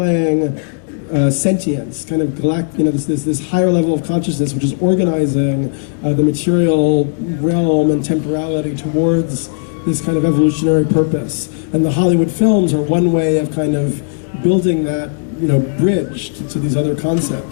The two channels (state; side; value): silent; right; 65 dB below the other